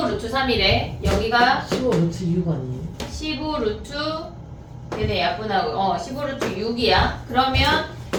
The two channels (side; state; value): both; identical; correlation 1.00